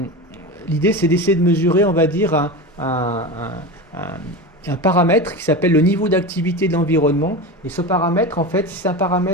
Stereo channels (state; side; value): normal; both; correlation 0.25